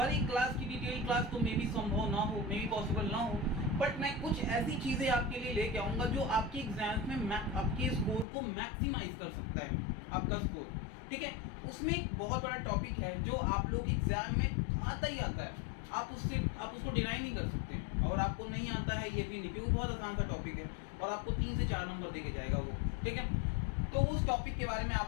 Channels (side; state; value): right; drops out; at 8.2 s